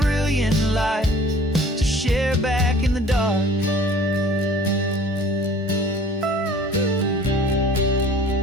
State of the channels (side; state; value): both; normal; correlation 0.49